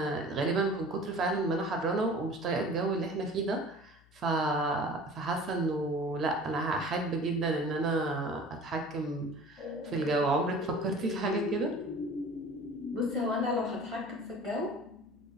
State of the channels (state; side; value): noise; left; hum, 28 dB below the sound